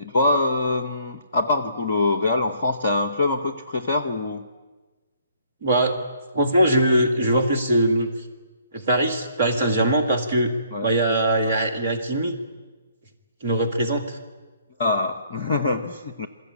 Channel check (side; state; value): both; inverted; correlation -0.63